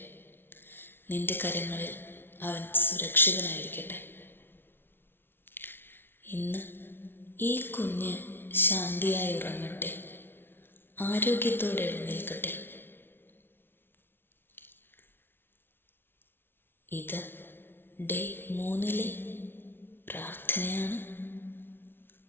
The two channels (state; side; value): late; right; 0.11 ms